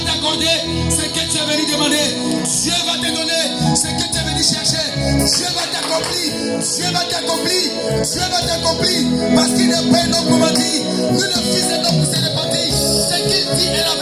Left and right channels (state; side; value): identical; both; correlation 1.00